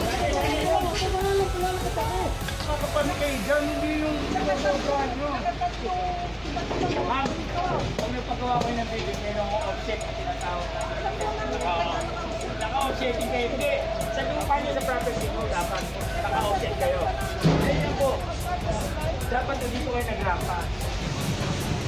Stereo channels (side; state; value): both; identical; correlation 1.00